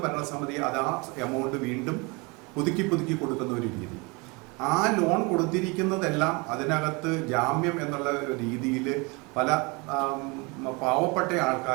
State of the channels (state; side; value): quieter; left; 28.2 dB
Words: ഭരണസമിതി അത് ആ എമൗണ്ട് വീണ്ടും പുതുക്കി കൊടുക്കുന്ന ഒരു രീതി. ആ ലോൺ കൊടുത്തിരിക്കുന്നതെല്ലാം അതിനകത്ത് ജാമ്യം എന്നുള്ള രീതിയിൽ പല പാവപ്പെട്ട